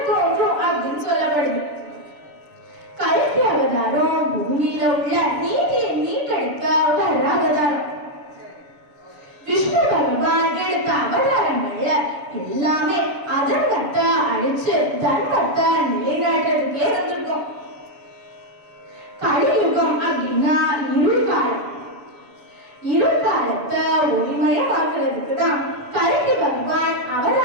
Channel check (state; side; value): late; left; 7.0 ms